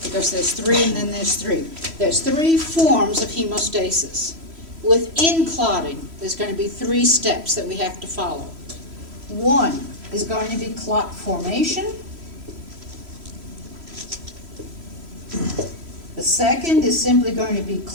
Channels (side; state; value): left; late; 3.1 ms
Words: because there's 3 and then there's 3. There's 3 forms of hemostasis. Within clotting, there's going to be 3 steps that we have to follow. 1 is going to be clot formation. The second is simply going to be